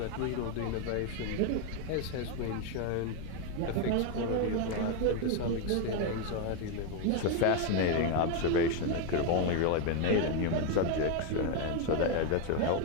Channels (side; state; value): both; different; correlation 0.01